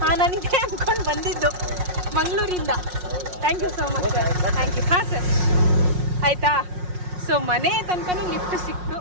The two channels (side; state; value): left; late; 5.5 ms